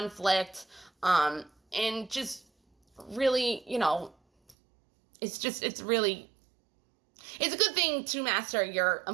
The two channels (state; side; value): drops out; left; at 4.5 s